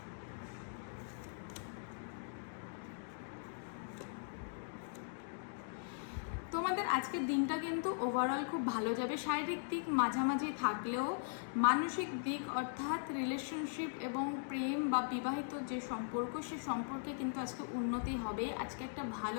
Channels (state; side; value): silent; right; digital silence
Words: তোমাদের আজকের দিনটা কিন্তু ওভারঅল খুব ভালো যাবে। শারীরিক দিক মাঝামাঝি থাকলেও মানসিক দিক অর্থাৎ রিলেশনশিপ এবং প্রেম বা বিবাহিত যে সম্পর্ক সে সম্পর্কে কিন্তু আজকে উন্নতি হবে। আজকে একটা